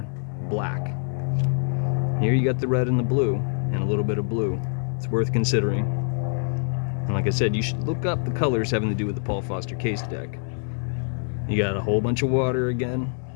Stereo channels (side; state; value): right; silent; 59 dB below the other